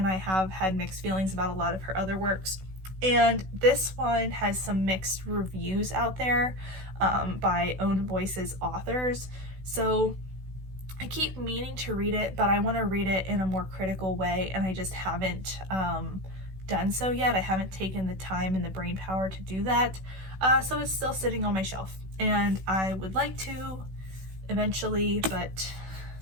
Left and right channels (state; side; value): late; left; 16 ms